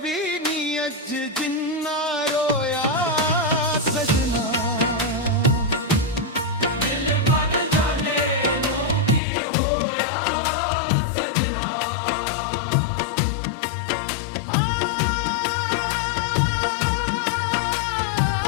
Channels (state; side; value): drops out; right; at 9.2 s